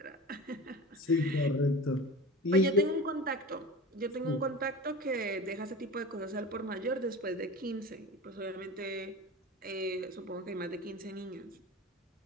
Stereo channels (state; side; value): normal; both; correlation 0.32